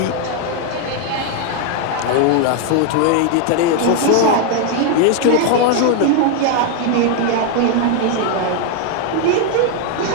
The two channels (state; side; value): different; both; correlation 0.01